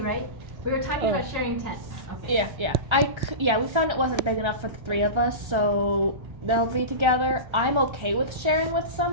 right? We were talking about sharing tents. Okay. Yeah. We found it wasn't big enough for the 3 of us, so they'll be together. I'm okay with sharing with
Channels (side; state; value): left; late; 1.3 ms